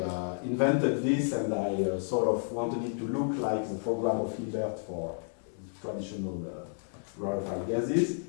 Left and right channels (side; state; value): right; silent; digital silence